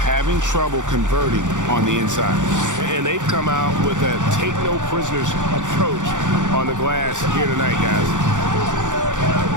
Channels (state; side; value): late; left; 0.86 ms